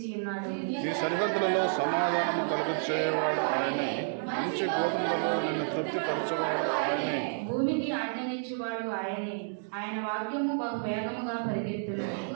ఉన్నాడు. నీ సరిహద్దులలో సమాధానము కలుగచేయవాడు ఆయనే, మంచి గోధుమలలో నిన్ను తృప్తిపరచువాడు ఆయనే. భూమికి ఆజ్ఞనిచ్చువాడు ఆయనే, ఆయన వాక్యము బహు వేగముగా పరిగెత్తును.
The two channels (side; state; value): left; silent; digital silence